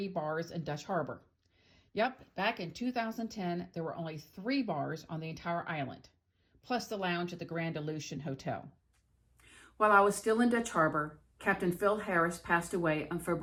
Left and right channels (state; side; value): identical; both; correlation 1.00